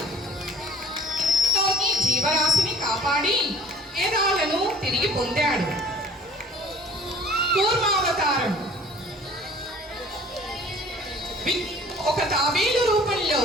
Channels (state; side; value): normal; both; correlation 0.49